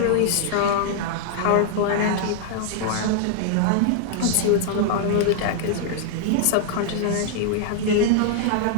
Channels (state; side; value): different; both; correlation -0.01